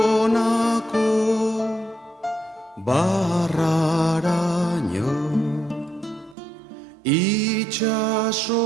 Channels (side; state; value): left; drops out; at 6.4 s